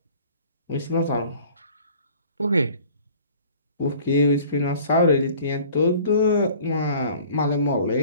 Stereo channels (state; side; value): inverted; both; correlation -0.49